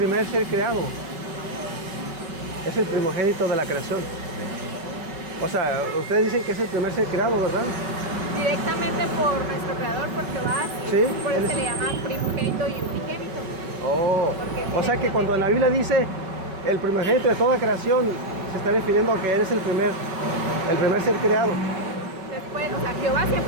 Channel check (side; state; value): left; late; 5.3 ms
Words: ser creado. Es el primogénito de la creación. O sea, ustedes dicen que es el primer ser creado, ¿verdad? Directamente por nuestro creador, por Jehová, Sí, por eso se le llama primogénito y unigénito. Oh, Porque o sea que cuando en la Biblia dice el primogénito de toda creación, se está refiriendo a que eres el primer ser creado. Después, o sea, Jehová